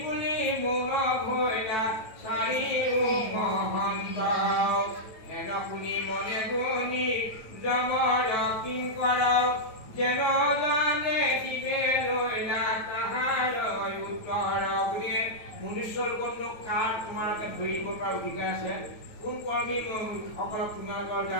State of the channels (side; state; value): right; late; 9.1 ms